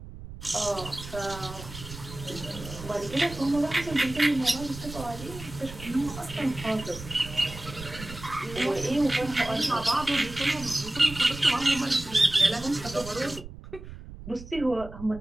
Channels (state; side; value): noise; right; rumble, 13 dB below the sound